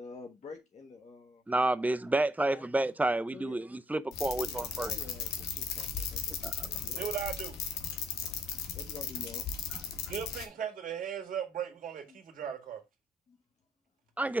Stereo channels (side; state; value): both; normal; correlation 0.70